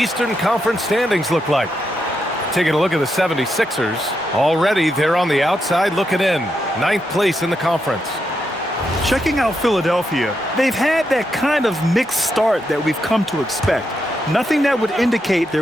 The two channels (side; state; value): both; normal; correlation 0.83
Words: Conference standings look like. Taking a look at the 76ers. Already, they're on the outside looking in. 9th place in the conference. Checking out Philadelphia, they've had that kind of mixed start that we've come to expect. Nothing that would indicate